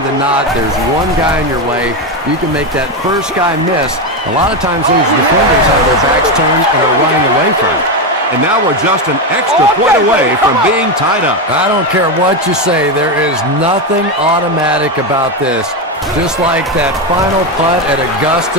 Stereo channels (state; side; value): normal; both; correlation 0.11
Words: than not, there's one guy in your way. You can make that first guy miss. A lot of times those defenders have their backs turned and are running away from it. And now we're just an extra point away from being tied up. I don't care what you say. There is nothing automatic about this. Just like that final putt at